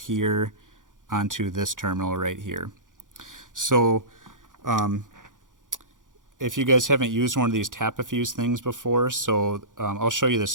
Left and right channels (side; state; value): left; late; 0.88 ms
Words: onto this terminal right here. So if you guys haven't used one of these tap-a-fuse things before, so I'll show you the